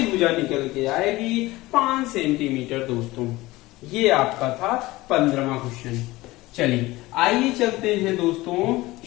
भुजा निकल के आएगी 5 सेंटीमीटर दोस्तों। ये आपका था 15वां क्वेश्चन। चलिए आइए चलते हैं दोस्तों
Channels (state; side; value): quieter; right; 19.4 dB